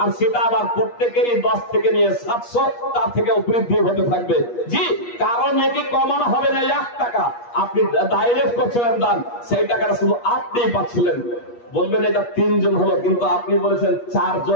আর সেটা আবার প্রত্যেকেরই 10 থেকে নিয়ে 700, তার থেকেও বৃদ্ধি হতে থাকবে। জি, কারণ নেকি কমানো হবে না 1 টাকা। আপনি ডাইরেক্ট করছিলেন দান, সেই টাকাটা শুধু আপনিই পাচ্ছিলেন। বলবেন এটা 3 জন হলো, কিন্তু আপনি বলেছেন 4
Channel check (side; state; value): right; late; 8.4 ms